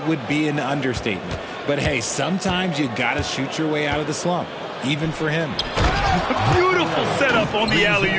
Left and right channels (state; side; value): identical; both; correlation 1.00